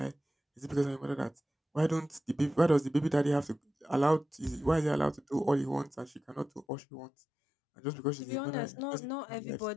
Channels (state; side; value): drops out; right; at 6.7 s